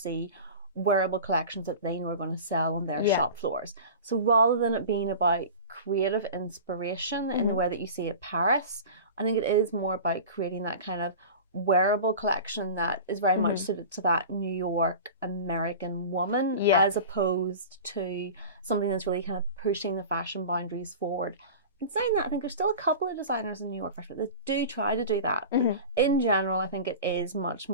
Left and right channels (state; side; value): inverted; both; correlation -0.34